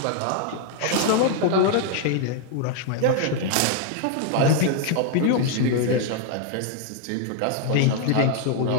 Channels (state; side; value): different; both; correlation 0.00